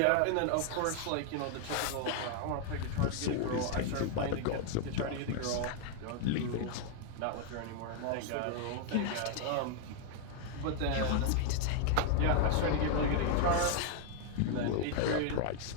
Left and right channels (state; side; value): different; both; correlation 0.00